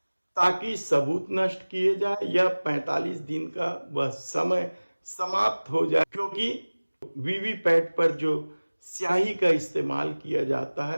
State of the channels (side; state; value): both; inverted; correlation -1.00